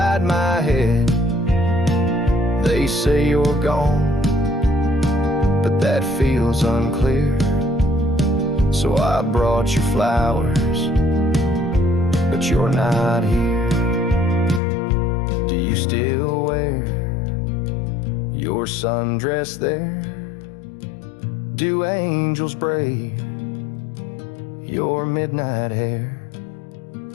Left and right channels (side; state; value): right; drops out; at 14.6 s